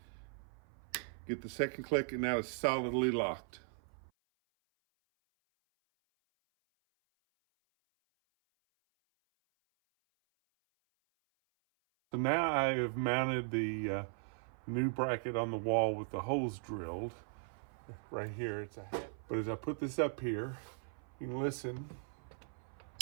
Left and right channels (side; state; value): left; silent; 52 dB below the other